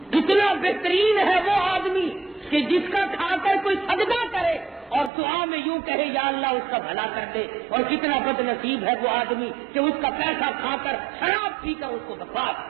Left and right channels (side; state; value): left; drops out; at 5.1 s